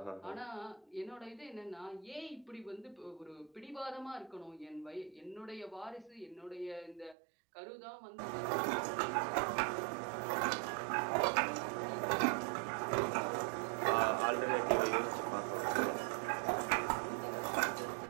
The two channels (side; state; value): left; drops out; at 7.2 s